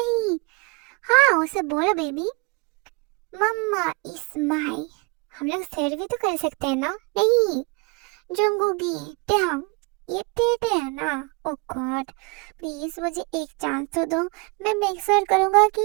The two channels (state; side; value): quieter; left; 29.4 dB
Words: हाँ उसे बोलो बेबी, मम्मा इज माई। हम लोग शेयर भी तो कर सकते हैं ना। नहीं जंगूगी, ये टेढ़े है ना। ओ गॉड, प्लीज मुझे एक चांस तो दो। मैं मेक श्योर करूंगा कि